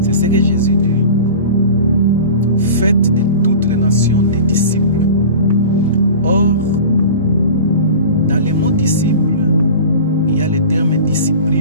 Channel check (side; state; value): both; inverted; correlation -0.35